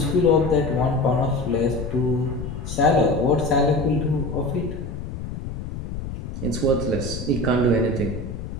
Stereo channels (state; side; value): noise; left; rumble, 8 dB below the sound